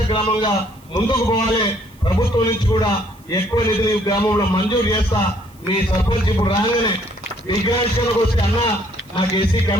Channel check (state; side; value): noise; right; hiss, 29 dB below the sound